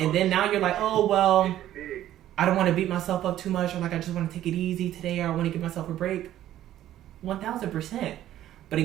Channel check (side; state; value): left; quieter; 12.7 dB